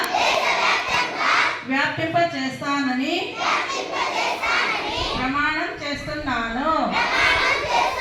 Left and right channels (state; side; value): identical; both; correlation 1.00